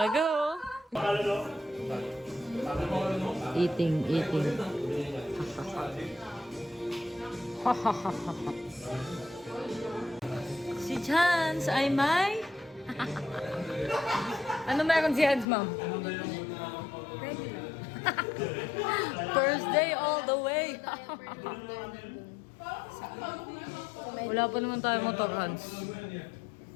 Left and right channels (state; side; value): drops out; right; at 15.5 s